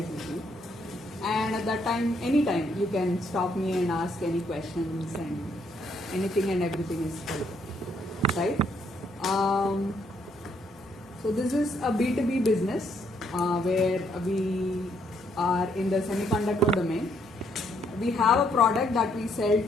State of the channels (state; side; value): normal; both; correlation 0.71